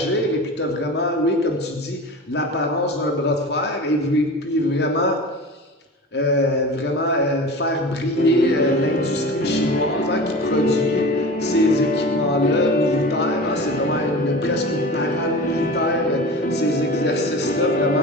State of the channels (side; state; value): both; normal; correlation 0.34